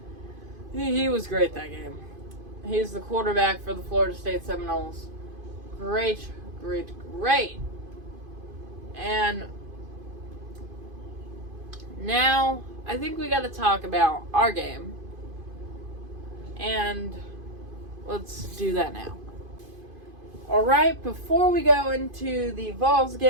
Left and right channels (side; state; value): left; late; 2.5 ms